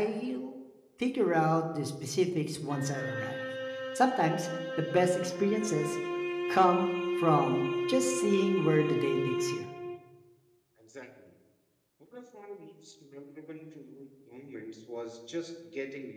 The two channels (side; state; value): both; identical; correlation 1.00